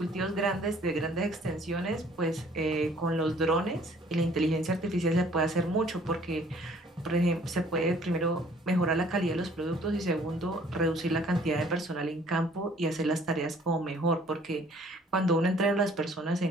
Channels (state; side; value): normal; both; correlation 0.57